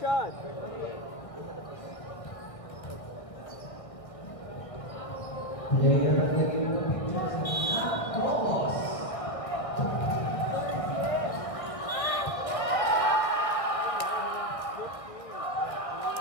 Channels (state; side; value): late; right; 1.6 ms